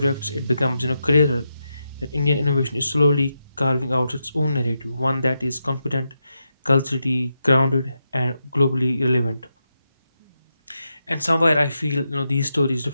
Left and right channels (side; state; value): both; inverted; correlation -0.86